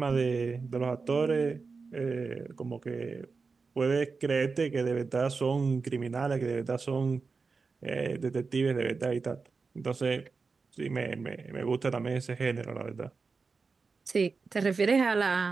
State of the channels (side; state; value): left; quieter; 4.6 dB